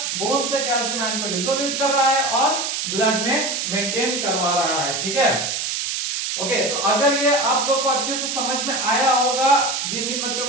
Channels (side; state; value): right; noise; hiss, 2 dB below the sound